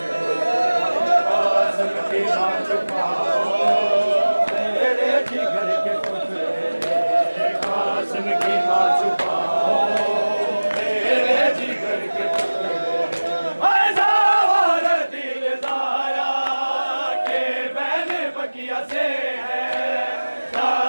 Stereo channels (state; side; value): inverted; both; correlation -1.00